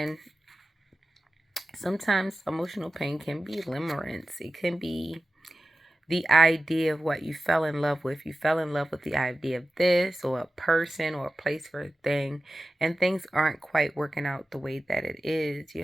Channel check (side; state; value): both; normal; correlation 0.95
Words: sometimes emotional pain can be limerence. It can be the idea of what you fell in love with. You fell in love with the idea of this or a person or a place for a thing, and things aren't quite working out the way that it is.